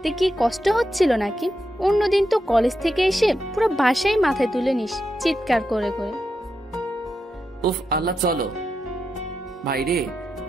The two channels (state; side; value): normal; both; correlation 0.86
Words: কি কষ্ট হচ্ছিল নাকি? অন্যদিন তো কলেজ থেকে এসে পুরো বাসায় মাথায় তুলে নিস চিৎকার করে করে। উফ আল্লাহ, চলো। ভাইরে,